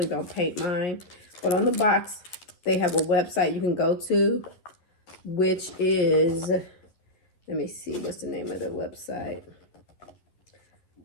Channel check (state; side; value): late; right; 11 ms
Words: don't paint mine. But on the box, they have a website you can go to, which is, let me see, what's the name of the website?